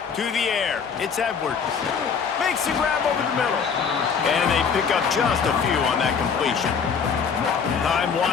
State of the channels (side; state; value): right; quieter; 6.3 dB